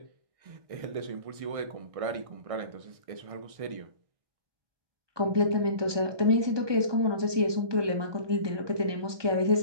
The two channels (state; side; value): late; left; 1.2 ms